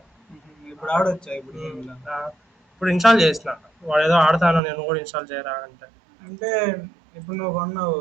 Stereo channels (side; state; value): left; drops out; at 4.6 s